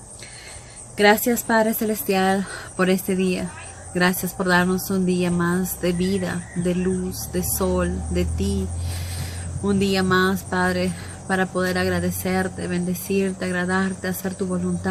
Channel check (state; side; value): identical; both; correlation 1.00